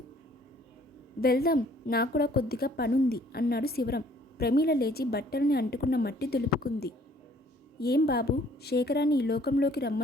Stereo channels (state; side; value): normal; both; correlation 0.59